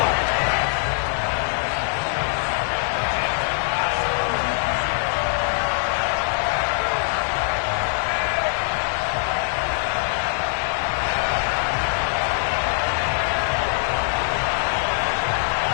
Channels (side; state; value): right; silent; digital silence